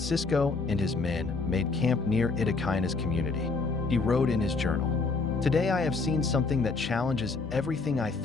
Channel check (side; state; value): right; quieter; 4.1 dB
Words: and his men made camp near Itakaina's community, he wrote in his journal, "Today I have seen something that challenges everything I